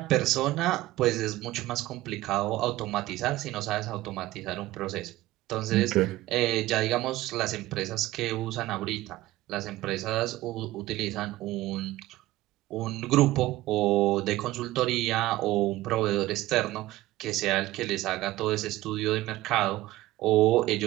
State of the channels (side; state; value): left; quieter; 17.0 dB